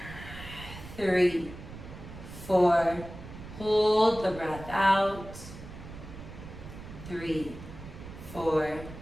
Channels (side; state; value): right; noise; rumble, 13 dB below the sound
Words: 3, 4. Hold the breath out. 3, 4.